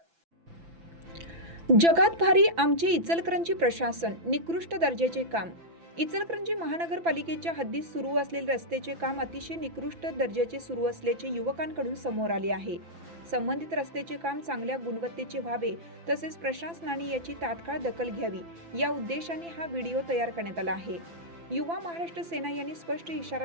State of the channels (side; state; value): left; late; 5.9 ms